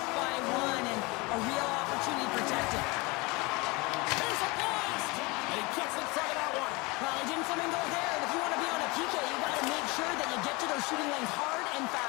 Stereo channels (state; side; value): quieter; right; 25.5 dB